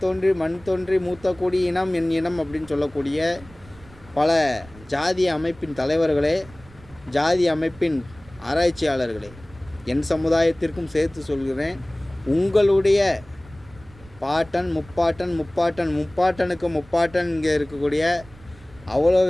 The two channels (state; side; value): noise; right; rumble, 22 dB below the sound